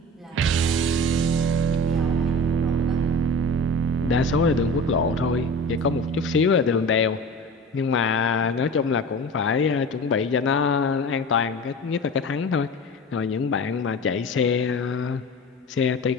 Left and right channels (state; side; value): normal; both; correlation 0.35